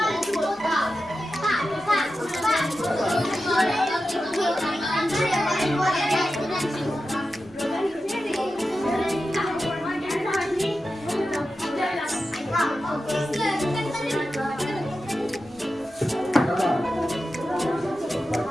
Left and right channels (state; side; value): normal; both; correlation 0.91